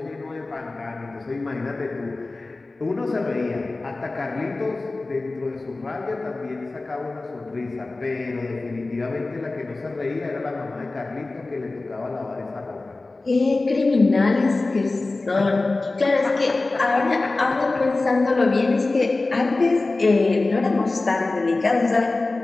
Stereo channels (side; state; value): right; quieter; 3.3 dB